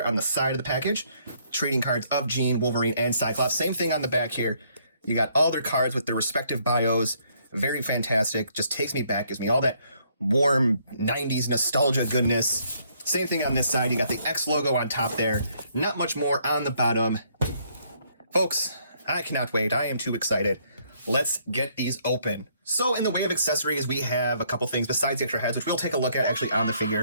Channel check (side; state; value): both; inverted; correlation -0.68